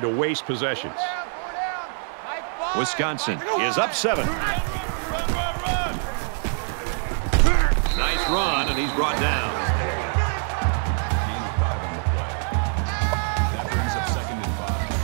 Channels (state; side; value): silent; left; 58 dB below the other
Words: to waste possessions. Wisconsin is up 7. Nice run, and he's brought down. Gain of 5 on the play. That brings up 2nd and